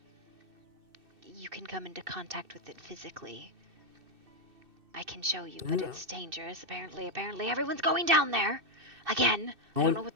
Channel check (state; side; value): late; left; 2.6 ms